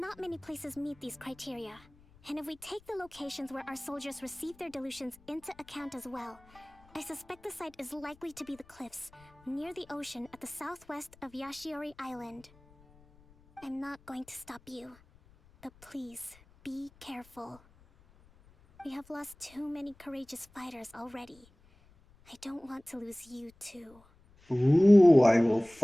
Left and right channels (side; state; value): left; noise; rumble, 27 dB below the sound